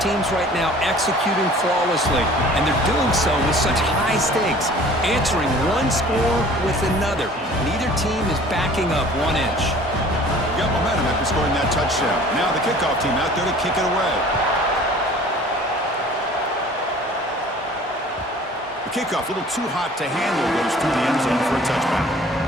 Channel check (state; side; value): normal; both; correlation 0.48